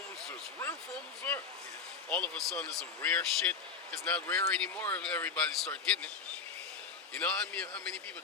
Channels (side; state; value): right; quieter; 5.4 dB